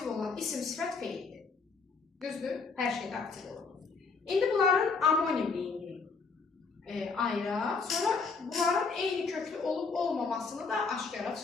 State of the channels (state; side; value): quieter; right; 4.7 dB